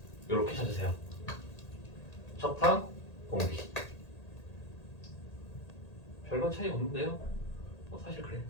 이렇게 찾으세요. 첫항 공비. 별반 차이 없는데요? 사실 그래요.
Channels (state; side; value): late; right; 1.8 ms